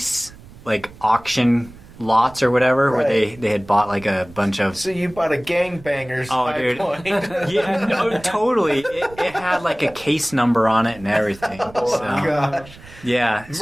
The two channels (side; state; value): right; noise; rumble, 20 dB below the sound